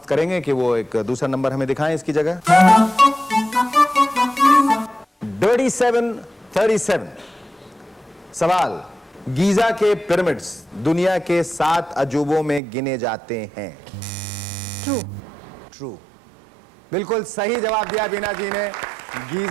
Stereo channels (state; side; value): drops out; left; at 12.6 s